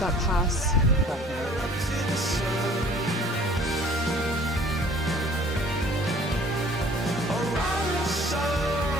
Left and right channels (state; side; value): normal; both; correlation 0.52